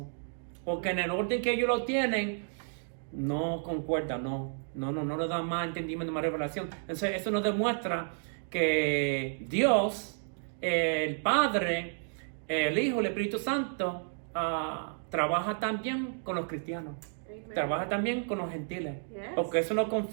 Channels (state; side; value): silent; left; digital silence